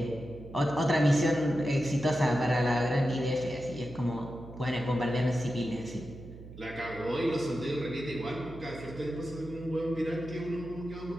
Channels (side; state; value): right; noise; hum, 15 dB below the sound